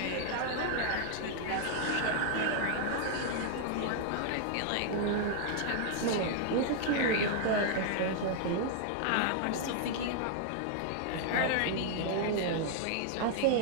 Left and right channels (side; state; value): both; different; correlation -0.01